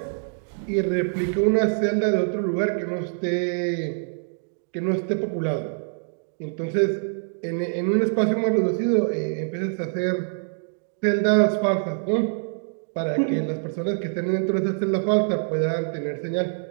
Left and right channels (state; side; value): silent; left; digital silence